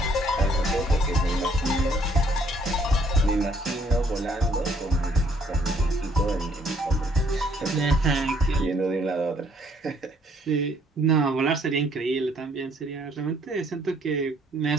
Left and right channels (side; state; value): both; normal; correlation 0.65